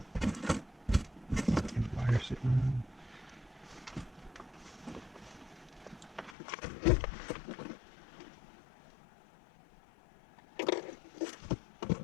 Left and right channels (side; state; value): right; drops out; at 6.4 s